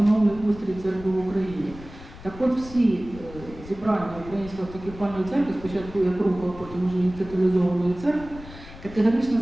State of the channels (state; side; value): noise; left; rumble, 16 dB below the sound